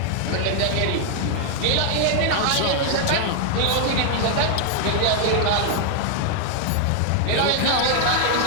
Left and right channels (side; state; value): both; different; correlation 0.00